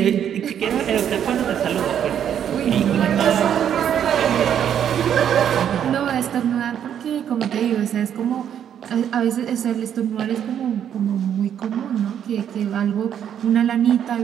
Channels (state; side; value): quieter; left; 9.3 dB